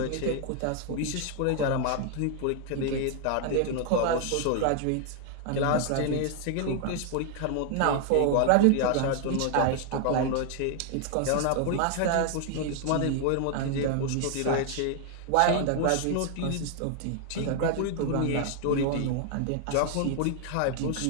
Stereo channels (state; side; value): different; both; correlation 0.00